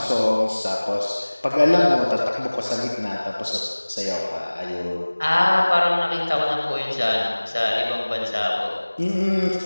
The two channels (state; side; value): inverted; both; correlation -1.00